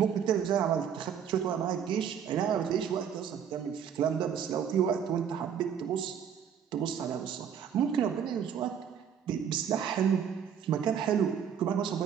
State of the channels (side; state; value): left; quieter; 8.1 dB